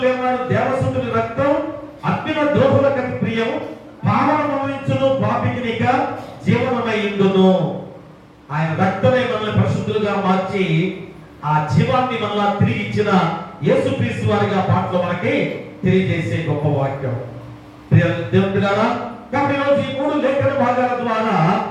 ఏమన్నాడు, దేవసుతుని రక్తం అగ్నిన ద్రోహులకు ప్రియం, పావనమనించును పాపికినిక జీవనమయ్యుండును. ఆయన రక్తమే మనల్ని పరిశుద్ధులుగా మార్చి ఆ జీవాన్ని మనల్ని తిరిగి ఇచ్చిన యేసుక్రీస్తు వారిగా పాటలో మనకి తెలియజేసే గొప్ప వాక్యం. దేవుని బిడ్డలారా, కాబట్టి ఈరోజు ఈ 3 లేఖన భాగాల ద్వారా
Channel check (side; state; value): both; identical; correlation 1.00